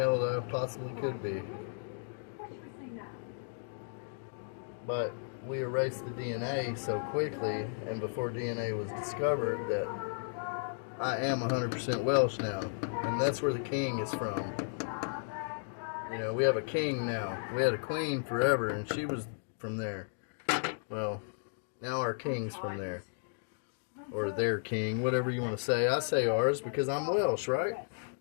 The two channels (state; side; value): silent; right; digital silence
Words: that I possibly could be. But we erased the DNA so quickly, and before DNA was discovered, that I am 100% Welsh now. And that's where the king is from. You know, we have a king now. We had a queen forever, and she was from there. Well, now our king's from there. Or their king, whatever you want to say. I say ours because I'm Welsh, right?